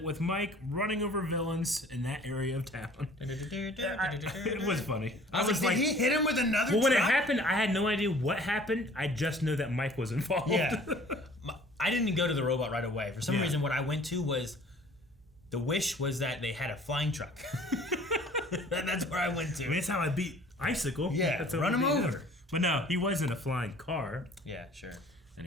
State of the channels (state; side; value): normal; both; correlation 0.51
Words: with Mike running over villains in that area of town?" It was funny. I was like, did he hit him with another? Well, when it happened, I had no idea what happened. I just know that Mike was involved. Yeah. I didn't go to the robot right away. For some reason, what I went to was the wish was that they had a flying truck. That's where I went to. I mean, that's how I beat Icicle. Yeah, that's run him over. But no, he wasn't a flying car. Yeah, sure.